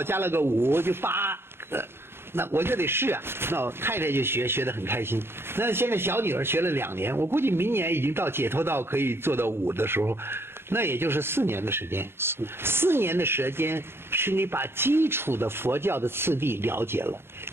加了个5就8，那我就得试啊。那我太太就学得很开心。那现在小女儿学了2年，我估计明年已经到解脱道可以做到5的时候，那也就是4年的时间。4年的时间是你把基础的佛教的次第了解了，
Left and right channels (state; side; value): late; left; 0.11 ms